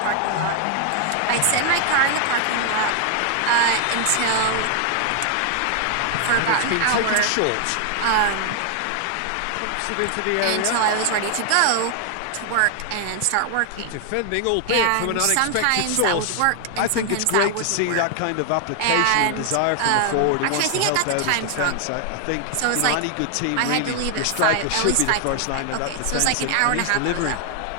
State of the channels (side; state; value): both; different; correlation 0.00